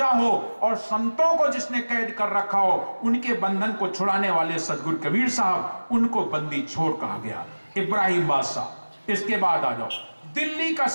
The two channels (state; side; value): inverted; both; correlation -1.00